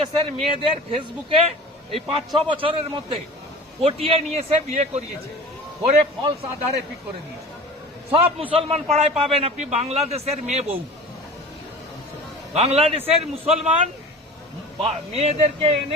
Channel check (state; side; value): normal; both; correlation 0.38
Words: মেয়েদের ফেসবুকে এই 5-6 বছরের মধ্যে পটিয়ে নিয়ে এসে বিয়ে করিয়েছে, করে ফলস আধারে পিক করে দিয়েছে। সব মুসলমান পাড়ায় পাবেন আপনি বাংলাদেশের মেয়ে বউ। বাংলাদেশের মুসলমান মেয়েদেরকে